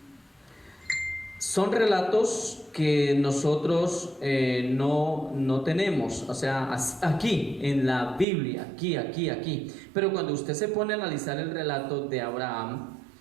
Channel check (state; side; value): drops out; left; at 8.2 s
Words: son relatos que nosotros no tenemos, o sea, aquí en la Biblia, aquí. Pero cuando usted se pone a analizar el relato de Abraham,